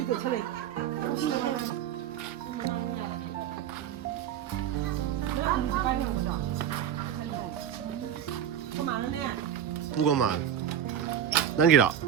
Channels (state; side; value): quieter; left; 9.6 dB